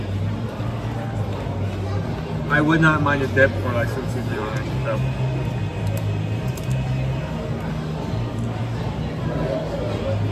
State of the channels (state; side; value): identical; both; correlation 1.00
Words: I would not mind a dip or like some seasoning on it. So.